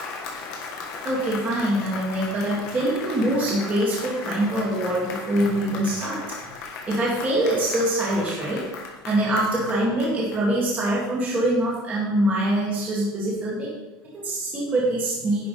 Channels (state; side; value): normal; both; correlation 0.54